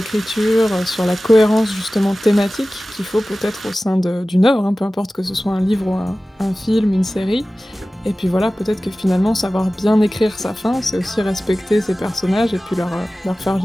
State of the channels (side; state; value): both; normal; correlation 0.97